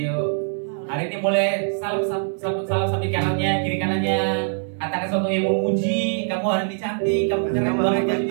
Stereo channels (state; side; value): silent; left; 64 dB below the other